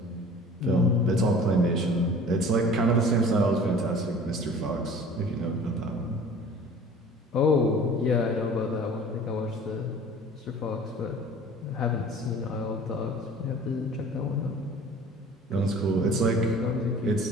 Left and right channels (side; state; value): both; normal; correlation 0.45